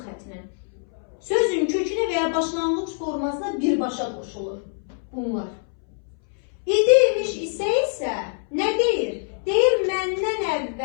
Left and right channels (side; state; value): right; silent; 62 dB below the other